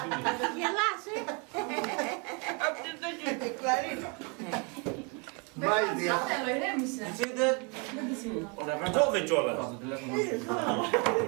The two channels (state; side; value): quieter; left; 33.6 dB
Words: Γελάς, Αυτή δεν είναι κλαρίνα. Σμάιλ, θεία. Κόβε κιόλας.